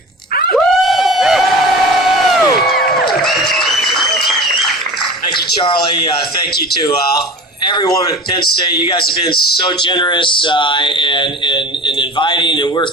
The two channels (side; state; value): both; normal; correlation 0.37